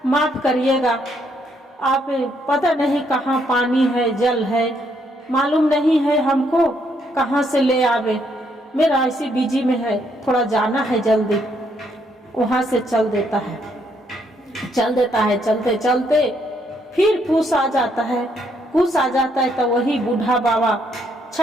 माफ करिएगा, आप पता नहीं कहाँ पानी है जल है, मालूम नहीं है हमको कहाँ से ले आवे, मेरा ऐसी बिजी में है, थोड़ा जाना है जल्दी। वहां से चल देता है। चलते चलते फिर फूस आ जाता है। तो वही बूढ़ा बाबा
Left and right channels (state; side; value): normal; both; correlation 0.72